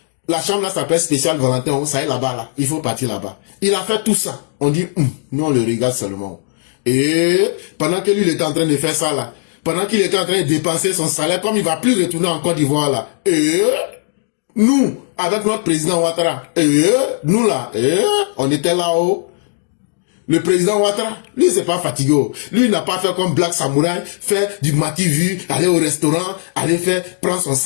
la chambre là s'appelle spécial Valentin, ça est là-bas là, il faut partir là-bas. Il a fait tout ça. On dit, nous on le regarde seulement. Et pendant que lui il était en train de faire ça là, pendant qu'il était en train de dépenser son salaire, comme il va plus retourner en Côte d'Ivoire là, et nous, avec notre président Ouattara, nous là, on était là-haut. Le président Ouattara, lui, c'est pas fatigué. Lui, il n'a pas fait comme Black Samouraï, faire du mati-vu, aller au restaurant, prendre son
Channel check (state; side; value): silent; right; digital silence